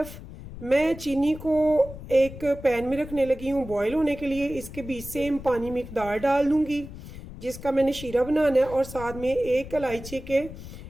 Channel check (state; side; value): noise; left; rumble, 13 dB below the sound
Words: मैं चीनी को एक पैन में रखने लगी हूँ बॉयल होने के लिए। इसके बीच सेम पानी मिकदार डाल दूँगी जिसका मैंने शीरा बनाना है, और साथ में 1 इलायची के